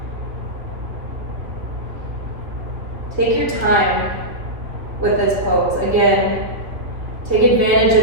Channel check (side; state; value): left; late; 3.1 ms